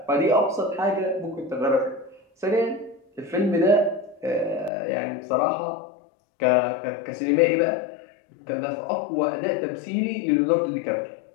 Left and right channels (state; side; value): drops out; right; at 4.7 s